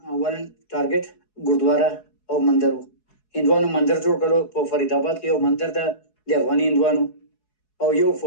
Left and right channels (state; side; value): late; right; 4.7 ms